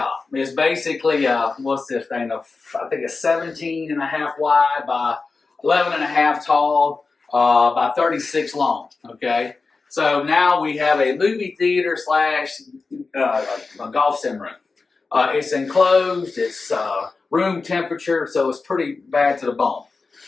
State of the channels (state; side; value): quieter; right; 4.2 dB